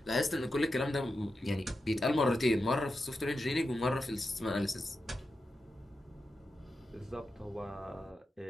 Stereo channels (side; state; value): both; normal; correlation 0.89